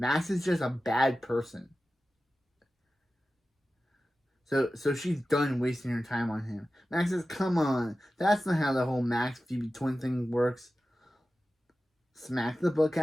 is just a bad person. So she's done wasting her time on him. Max says, come on. That's not how the whole Max-Phoebe twin thing works. Smack the book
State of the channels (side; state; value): both; normal; correlation 0.94